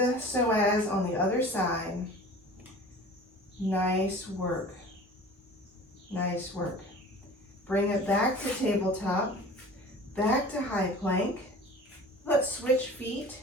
psoas on the other side. Nice work. Nice work. Bring it back to tabletop, back to high plank. Let's switch feet.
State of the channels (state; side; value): normal; both; correlation 0.42